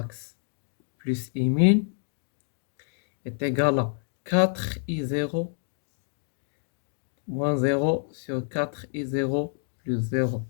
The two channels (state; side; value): silent; right; digital silence